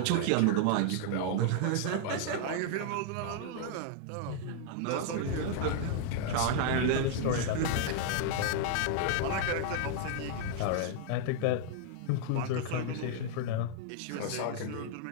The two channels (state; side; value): different; both; correlation 0.00